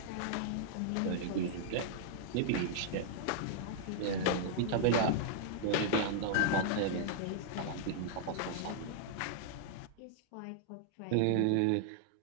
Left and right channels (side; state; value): both; different; correlation -0.01